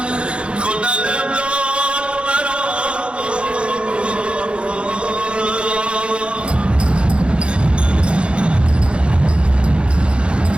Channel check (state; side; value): late; left; 0.057 ms